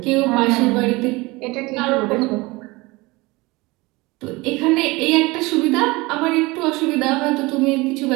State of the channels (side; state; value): left; quieter; 22.8 dB